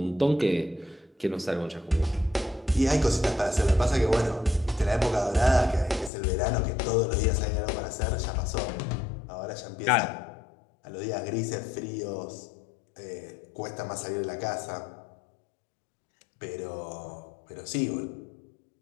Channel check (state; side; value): drops out; right; at 6.1 s